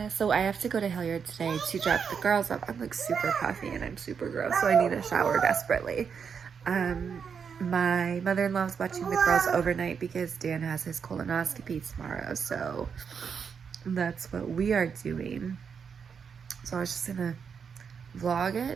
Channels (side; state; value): left; quieter; 6.6 dB